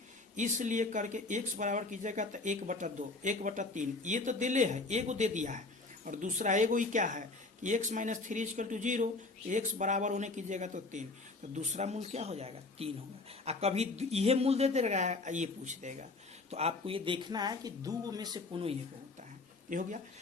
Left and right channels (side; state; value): right; quieter; 3.4 dB